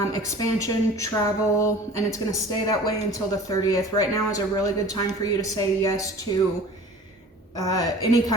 expansion, travel, and it's going to stay that way until the 30th. Right now is a really good time for you to say yes to any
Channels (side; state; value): both; normal; correlation 0.43